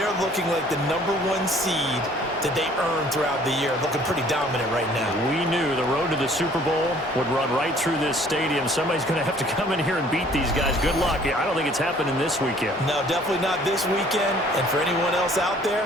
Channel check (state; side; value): normal; both; correlation 0.56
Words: looking like the #1 seed that they earned throughout the year. Looking pretty dominant right now. We knew the road to the Super Bowl would run right through this stadium. Somebody's going to have to come in here and beat these guys. Good luck. I don't think it's happening this weekend. No, definitely not this weekend. And for anyone else out